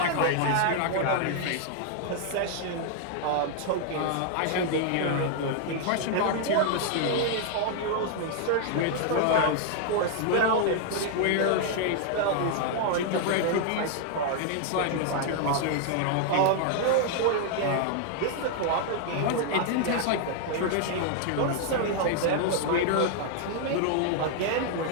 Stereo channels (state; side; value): different; both; correlation 0.00